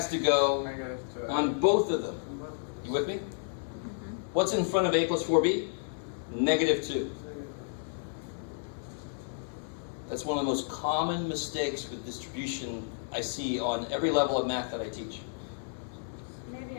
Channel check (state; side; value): silent; right; digital silence